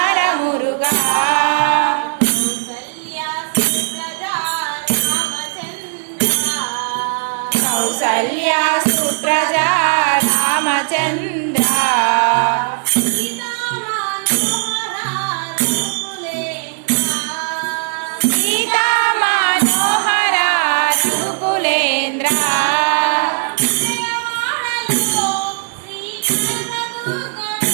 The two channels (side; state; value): left; silent; digital silence